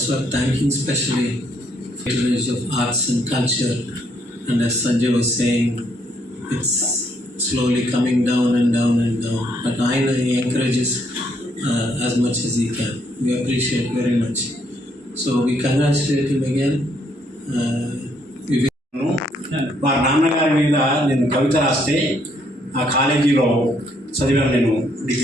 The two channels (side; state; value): both; normal; correlation 0.71